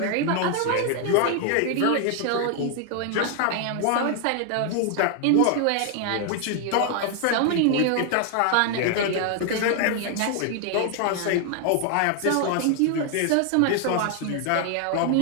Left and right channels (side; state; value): both; different; correlation 0.00